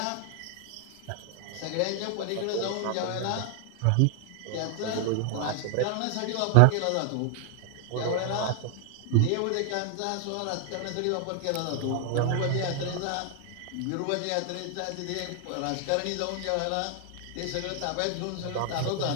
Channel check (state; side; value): different; both; correlation 0.00